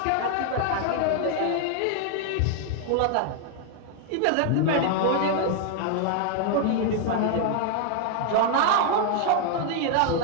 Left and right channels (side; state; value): both; different; correlation 0.00